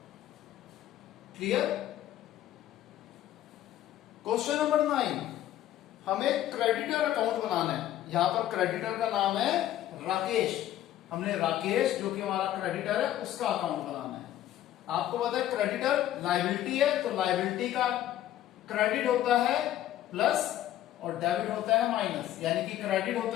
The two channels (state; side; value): quieter; right; 12.7 dB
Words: Clear? Question number 9, हमें क्रेडिटर अकाउंट बनाना है। यहां पर क्रेडिटर का नाम है राकेश, हमने राकेश जो कि हमारा क्रेडिटर है उसका अकाउंट बनाना है। आपको पता है क्रेडिटर लायबिलिटी है, तो लायबिलिटी का क्रेडिट होता है प्लस और डेबिट होता है माइनस, यानी कि क्रेडिट